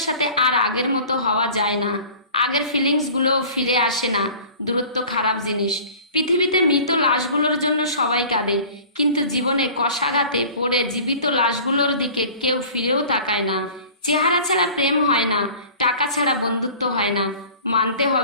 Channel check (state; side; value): inverted; both; correlation -0.44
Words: সাথে আর আগের মতো হওয়া যায় না। আগের ফিলিংসগুলোও ফিরে আসে না। দূরত্ব খারাপ জিনিস। পৃথিবীতে মৃত লাশগুলোর জন্য সবাই কাঁদে, কিন্তু জীবনে কষাঘাতে পড়ে জীবিত লাশগুলোর দিকে কেউ ফিরেও তাকায় না। চেহারা ছাড়া প্রেম হয় না, টাকা ছাড়া বন্ধুত্ব হয় না। মানতে